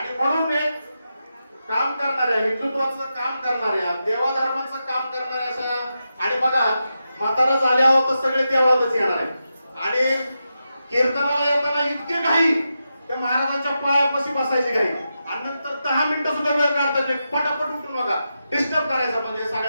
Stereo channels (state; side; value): inverted; both; correlation -0.88